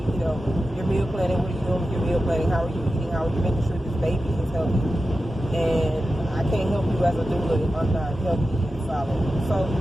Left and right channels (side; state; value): both; normal; correlation 0.92